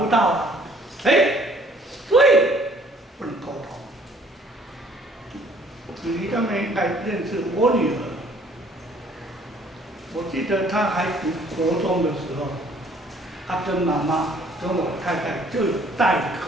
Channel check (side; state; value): both; normal; correlation 0.59